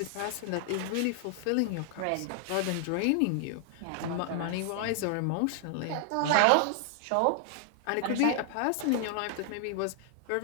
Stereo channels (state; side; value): different; both; correlation 0.00